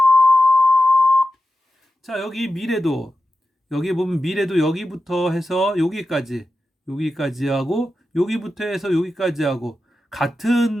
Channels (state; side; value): normal; both; correlation 0.91